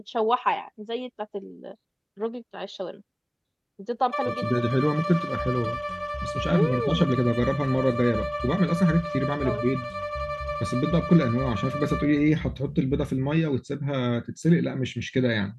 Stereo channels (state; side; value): identical; both; correlation 1.00